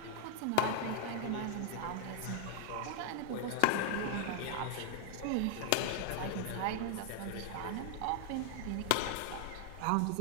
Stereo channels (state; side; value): different; both; correlation 0.00